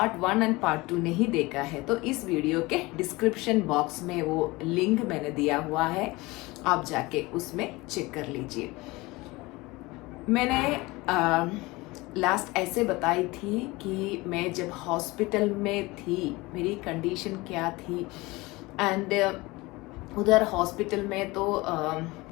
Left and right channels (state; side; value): quieter; right; 22.2 dB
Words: 1 एंड पार्ट 2 नहीं देखा है तो इस वीडियो के डिस्क्रिप्शन बॉक्स में वो लिंक मैंने दिया हुआ है, आप जाके उसमें चेक कर लीजिए। मैंने लास्ट ऐसे बताई थी कि मैं जब हॉस्पिटल में थी मेरी कंडीशन क्या थी, एंड उधर हॉस्पिटल में तो